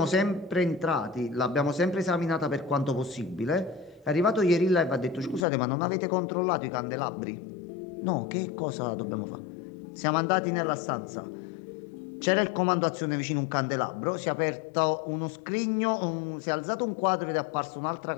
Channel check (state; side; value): drops out; right; at 5.5 s